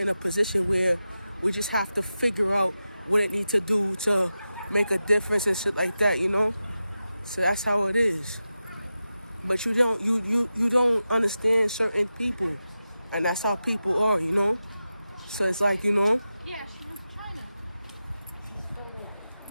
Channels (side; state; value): both; inverted; correlation -0.92